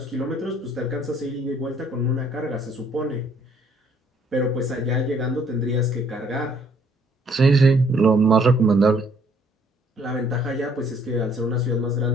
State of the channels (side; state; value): both; normal; correlation 0.63